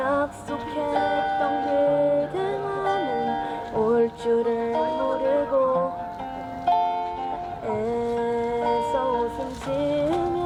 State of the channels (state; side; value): identical; both; correlation 1.00